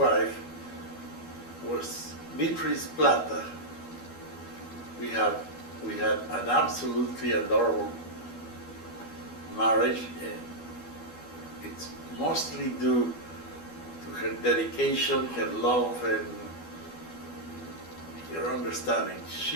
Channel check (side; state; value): right; late; 12 ms